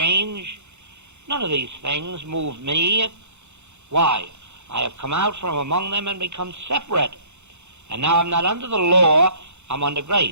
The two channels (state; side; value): late; left; 0.82 ms